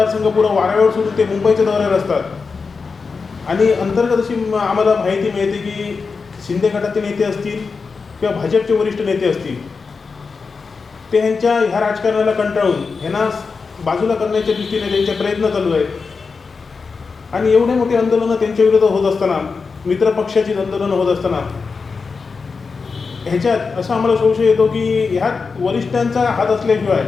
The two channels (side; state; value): right; quieter; 4.8 dB